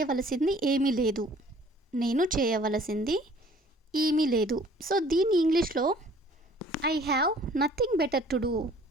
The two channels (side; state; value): both; normal; correlation 0.54